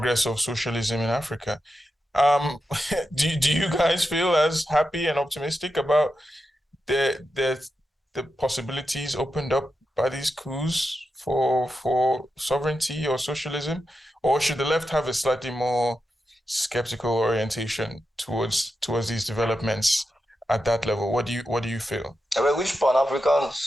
of socialism in Africa. Do you guys feel as happy and optimistic about the possibilities opened up by these coups for sovereignty or socialism, or should the left have a slightly more skeptical orientation towards these developments at that level? What do you feel? I mean, which Pan-African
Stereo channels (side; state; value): both; normal; correlation 0.89